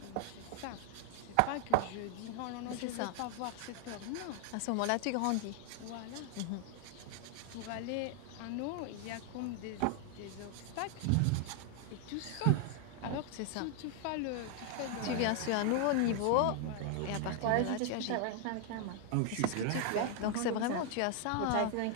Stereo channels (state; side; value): different; both; correlation 0.00